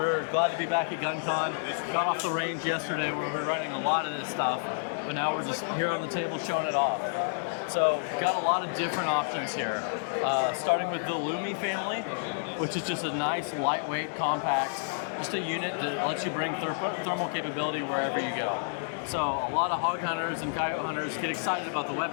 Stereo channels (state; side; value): silent; right; digital silence